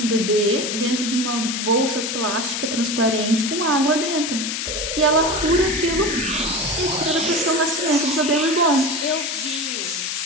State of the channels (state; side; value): noise; left; hiss, 3 dB below the sound